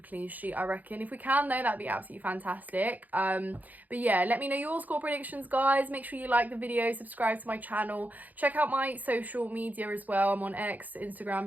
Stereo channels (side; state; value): left; late; 0.081 ms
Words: clean sheet, I reckon. If we can, though, that'd be absolutely fantastic. But yeah, let me know your score predictions, guys. Make sure you like the video, subscribe to my channel. Check out my social media as well. I'm on X,